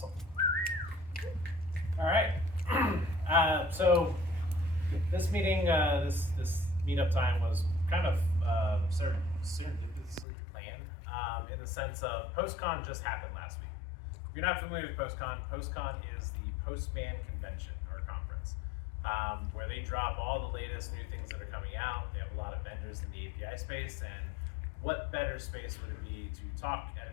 All right. So this meeting, this meetup time was kind of serendipitously planned in the sense of Postcon just happened last week. If you're not familiar with Postcon, Postcon is the Postman convention or conference where they drop all the latest new things that are coming out. They have a lot of vendors in the API space, and what better space would it be to talk at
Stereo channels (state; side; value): drops out; right; at 10.2 s